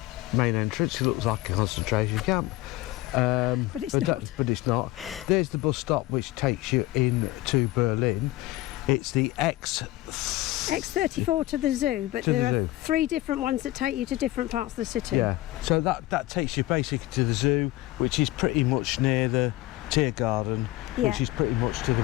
main entrance. It looks like a concentration camp. But it's not. There's the bus stop which takes you into Berlin. It's the X34 to the zoo, but there are 3 different ones that take you to different parts of the city. Yeah, so that takes you basically to the zoo, which is pretty much near the Tiergarten, which is pretty much to the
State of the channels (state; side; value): quieter; right; 17.8 dB